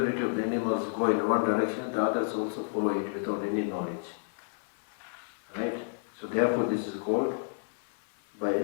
of the animals go in one direction, the others also follow it without any knowledge. Right? So therefore this is called, by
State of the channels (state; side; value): silent; right; digital silence